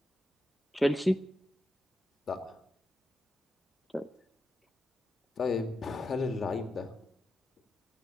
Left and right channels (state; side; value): normal; both; correlation 0.88